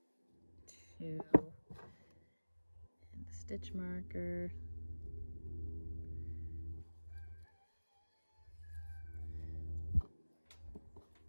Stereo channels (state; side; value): inverted; both; correlation -1.00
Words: 2, and the stitch marker.